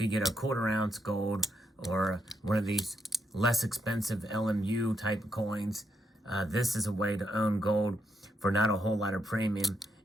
get a quarter ounce gold or one of these less expensive LMU type coins, this is a way to own gold for not a whole lot of premium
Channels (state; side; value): normal; both; correlation 0.80